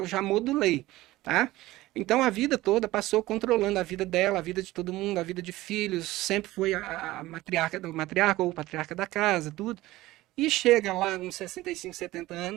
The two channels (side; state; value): left; quieter; 17.6 dB